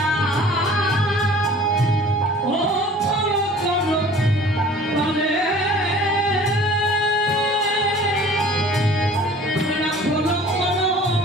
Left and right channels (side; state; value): both; normal; correlation 0.47